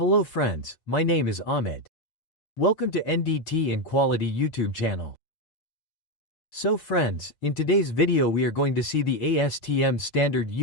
friends, my name is Ahmed. Welcome to NDT and Quality YouTube channel. So friends, in today's video we are going to see the ASTM standard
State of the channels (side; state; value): right; late; 6.5 ms